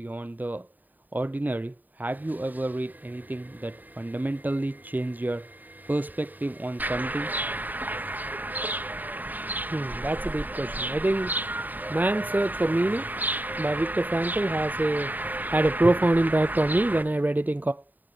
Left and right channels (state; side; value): late; left; 0.087 ms